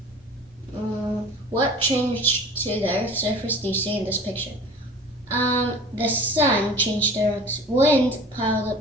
What changed to the Earth's surface do you see in this picture? The sun changed the Earth's wind, piled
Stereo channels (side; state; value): both; normal; correlation 0.42